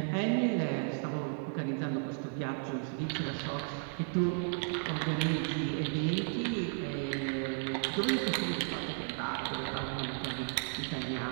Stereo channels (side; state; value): left; silent; 55 dB below the other